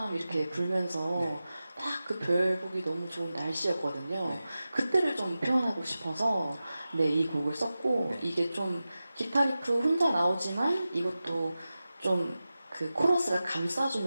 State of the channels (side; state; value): both; inverted; correlation -0.95